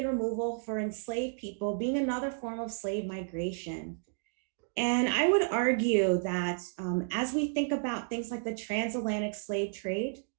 removal for enslaved people being another form of slave migration. And I would argue that as we think about things like the transatlantic slave trade,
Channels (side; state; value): left; silent; digital silence